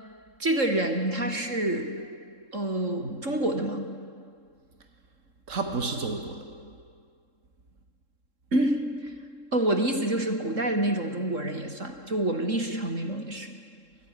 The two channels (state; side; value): late; left; 3.7 ms